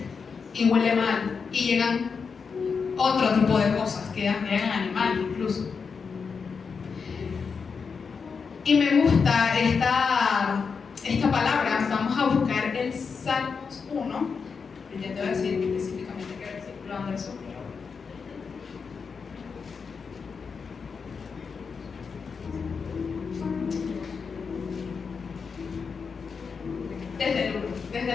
y huele mal y llegan otro tipo de cosas, llegan animales incluso. Y me gusta esta palabra. Vamos a buscar el Salmos 1. Ya te voy a decir específicamente qué versículo anda eso.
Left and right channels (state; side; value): quieter; right; 5.5 dB